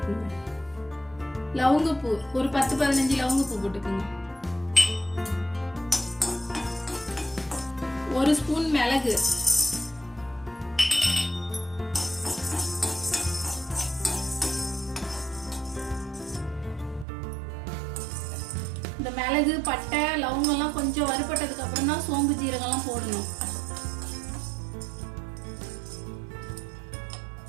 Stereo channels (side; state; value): left; drops out; at 17.1 s